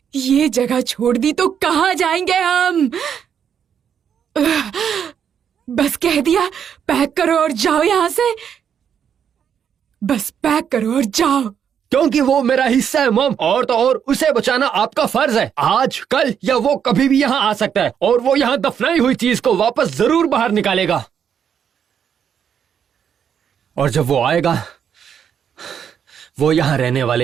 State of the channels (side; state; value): left; quieter; 8.1 dB